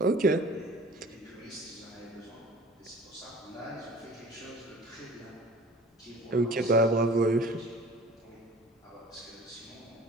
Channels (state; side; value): normal; both; correlation 0.45